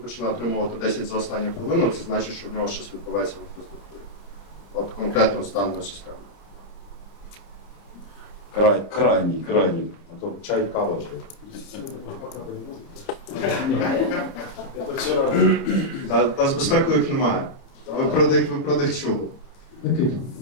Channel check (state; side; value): late; right; 30 ms